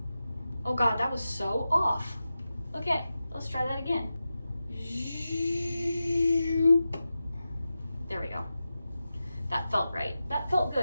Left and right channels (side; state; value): both; inverted; correlation -0.92